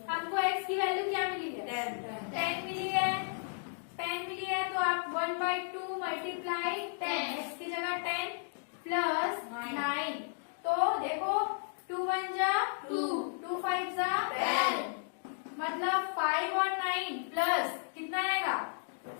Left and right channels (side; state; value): right; silent; digital silence